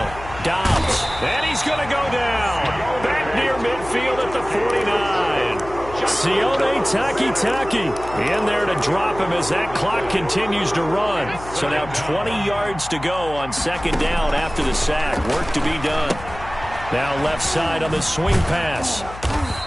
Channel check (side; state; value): left; noise; hum, 14 dB below the sound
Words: Dobbs. And he's going to go down. Back near midfield at the 49. Sione Takitaki in there to drop him as that clock continues to run. So now 20 yards to go on 2nd down after the sack. Work to be done. Now left side on the swing pass.